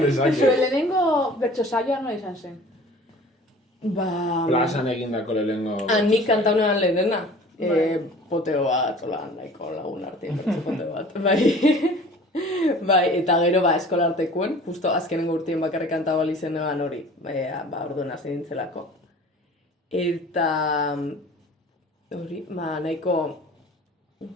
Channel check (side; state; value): both; normal; correlation 0.46